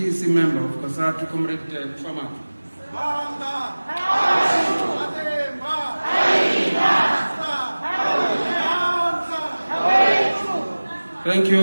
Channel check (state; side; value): inverted; both; correlation -1.00